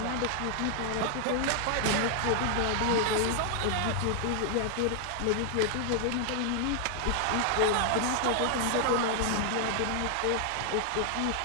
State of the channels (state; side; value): different; both; correlation 0.00